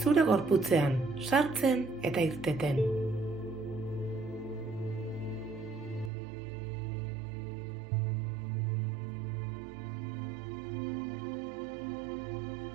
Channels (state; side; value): drops out; left; at 6.1 s